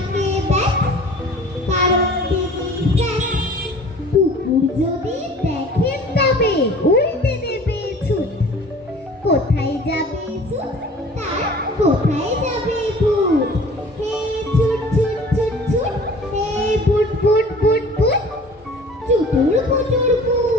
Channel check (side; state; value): both; normal; correlation 0.46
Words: ব্যাট, কারণ তিনি ফ্যাট। কুকুর যদি দেখেন তবে উল্টে দেবে ছুট, কোথায় যাবে ছুট তার কোথায় যাবে বুট। হে ছুট ছুট ছুট ছুট, হে বুট বুট বুট বুট, চুটুর পুটুর